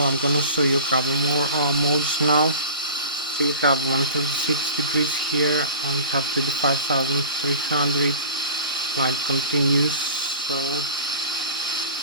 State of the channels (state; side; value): inverted; both; correlation -0.38